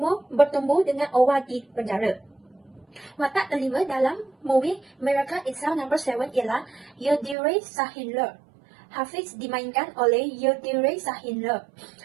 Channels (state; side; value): drops out; left; at 7.4 s